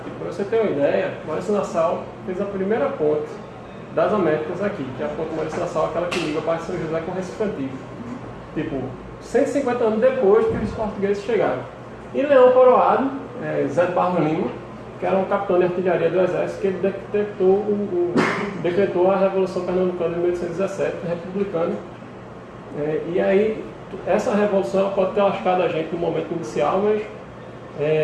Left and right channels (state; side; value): identical; both; correlation 1.00